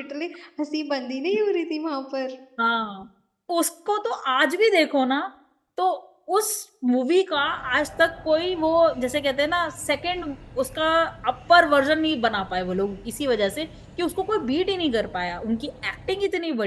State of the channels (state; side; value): identical; both; correlation 1.00